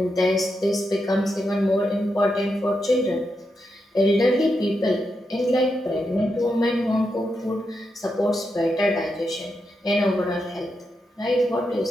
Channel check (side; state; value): both; normal; correlation 0.85